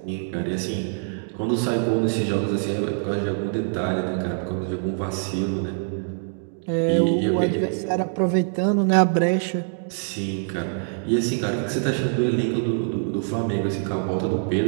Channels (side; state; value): left; silent; 62 dB below the other